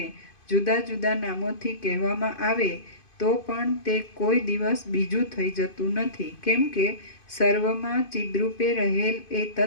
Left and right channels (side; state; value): right; late; 2.5 ms